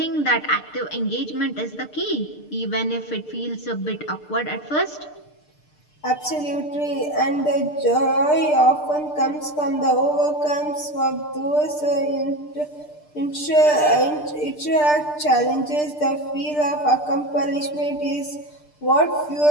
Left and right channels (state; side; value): late; right; 6.7 ms